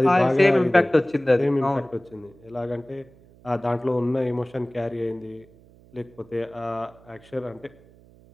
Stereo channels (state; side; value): noise; right; hum, 26 dB below the sound